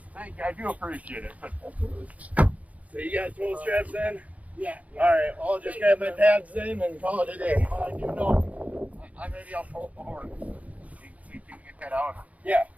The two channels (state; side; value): late; left; 0.069 ms